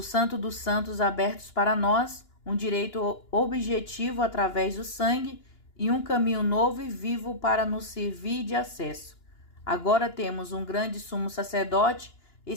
dos Santos abertos para nós, um direito objetivo através do sangue e um caminho novo e vivo para nos servir de acesso. Agora temos um grande sumo sacerdote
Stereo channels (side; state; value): right; late; 2.9 ms